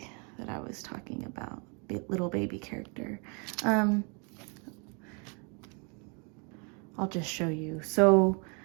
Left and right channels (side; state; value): left; quieter; 35.0 dB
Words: that I was talking about, the little baby character. I'll just show you. So